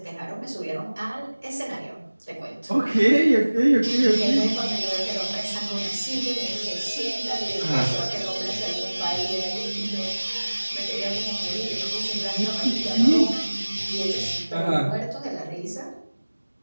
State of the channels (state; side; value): inverted; both; correlation -1.00